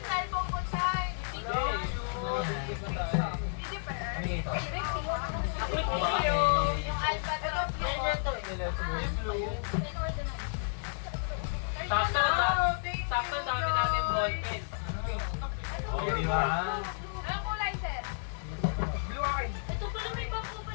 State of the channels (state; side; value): silent; right; digital silence